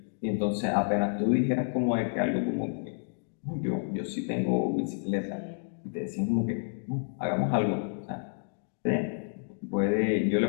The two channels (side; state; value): right; silent; 58 dB below the other